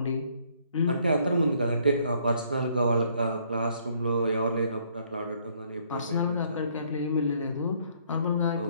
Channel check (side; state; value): both; inverted; correlation -0.65